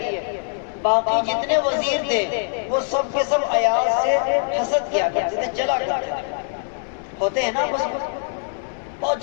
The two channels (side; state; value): right; silent; digital silence